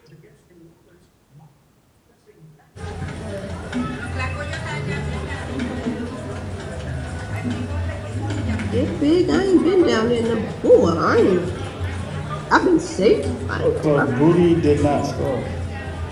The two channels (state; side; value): identical; both; correlation 1.00